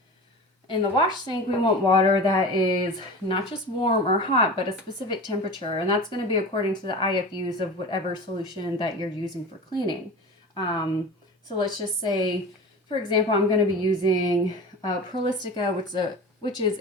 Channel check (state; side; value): normal; both; correlation 0.33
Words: In the wash sink, we want water that is not just warm or hot, but a specific temperature, and that's going to be according to the IFUs of whatever solution that you're using for cleaning. So let's just say, for example, I'm going to be using Prolistica, which is